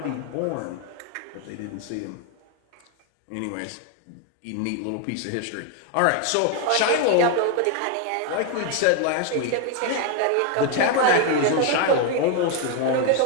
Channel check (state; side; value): different; both; correlation 0.01